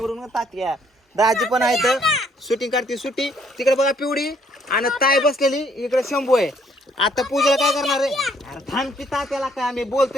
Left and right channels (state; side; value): normal; both; correlation 0.66